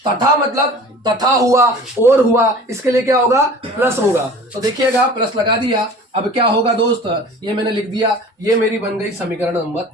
तथा मतलब तथा हुआ और हुआ, इसके लिए क्या होगा, प्लस होगा। तो देखिएगा, प्लस लगा दिया। अब क्या होगा दोस्त, ये मैंने लिख दिया, ये मेरी बन गई समीकरण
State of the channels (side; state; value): both; normal; correlation 0.42